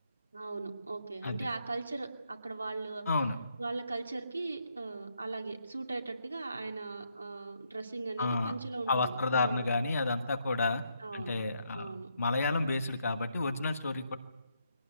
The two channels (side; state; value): both; inverted; correlation -0.77